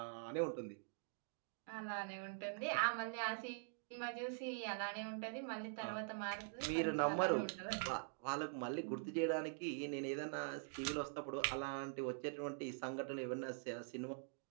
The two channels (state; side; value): silent; left; digital silence